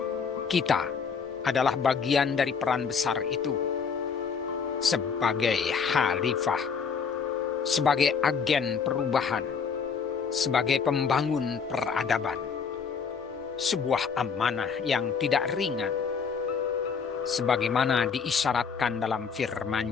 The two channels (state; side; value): quieter; right; 6.0 dB